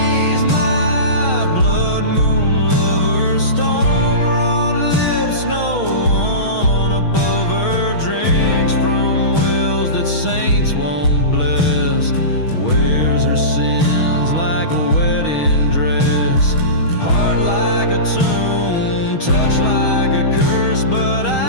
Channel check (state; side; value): late; right; 6.3 ms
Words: Saints won't bless, wears her sins like a wedding dress. Heart like a tune, touch like a curse, but